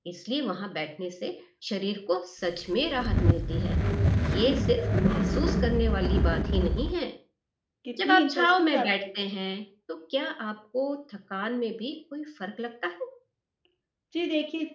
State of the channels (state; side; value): identical; both; correlation 1.00